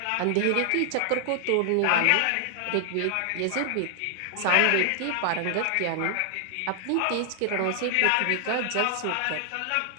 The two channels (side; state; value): both; different; correlation 0.00